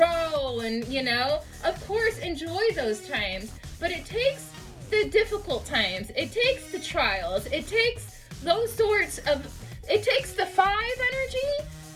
and, of course, enjoy those times. But it takes the difficult times, it takes the trials, it takes it takes the 5 energy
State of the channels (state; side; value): identical; both; correlation 1.00